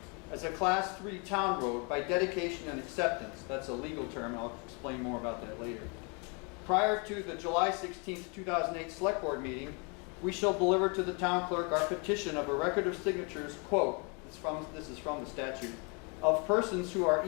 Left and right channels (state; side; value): quieter; right; 33.7 dB